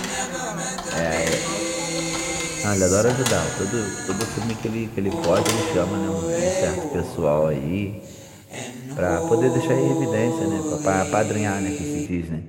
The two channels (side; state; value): both; identical; correlation 1.00